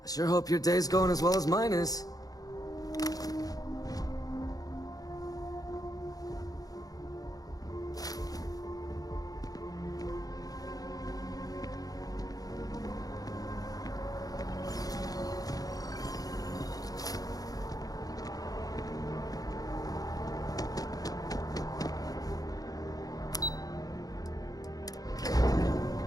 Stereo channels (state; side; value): late; right; 0.18 ms